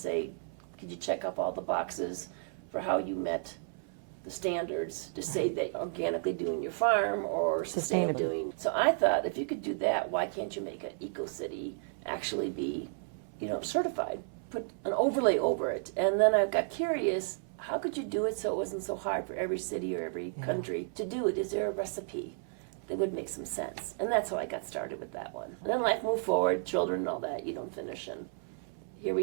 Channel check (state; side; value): silent; left; 56 dB below the other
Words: could you check off all the boxes for how you met the standards to say that organically doing your farm or sustainable doing. So I thought if you could do that, why can't you make an eco-city actually be, certified? Put an overlay over it. And then I got curious, how could you do it so it wasn't so hard for every city or every country to do it? Is there a recipe that would make some sense? And that's how I got started with that one. And then life moved forward, children and all that, you don't finish. And here